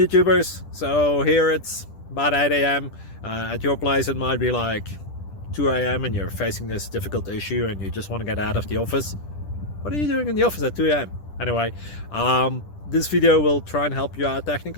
So here it's about 8 a.m. At your place it might be like 2 a.m. and you're facing this difficult issue and you just want to get out of the office. What are you doing in the office at 2 a.m.? Anyway, this video will try and help you out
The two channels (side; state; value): right; late; 10 ms